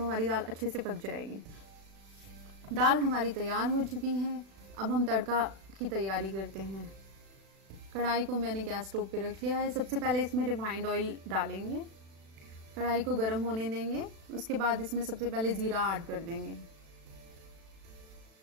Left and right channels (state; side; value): late; left; 36 ms